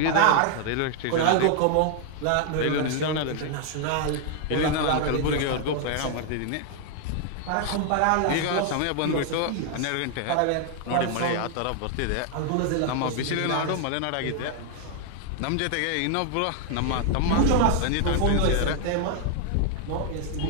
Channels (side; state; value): both; different; correlation 0.00